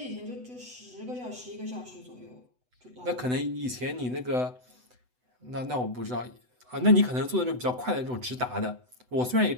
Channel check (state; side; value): late; left; 8.0 ms